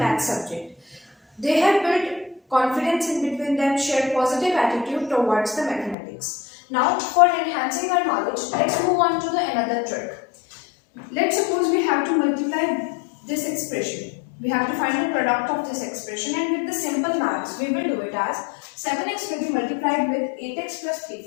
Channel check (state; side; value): drops out; right; at 6.0 s